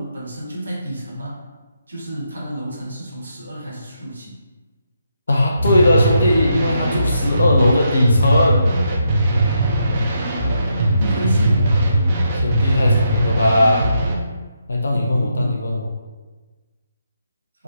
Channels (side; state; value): both; inverted; correlation -0.80